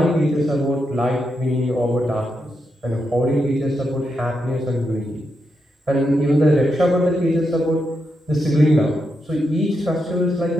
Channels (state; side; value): normal; both; correlation 0.84